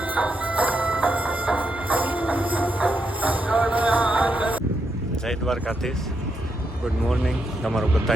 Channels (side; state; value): both; normal; correlation 0.81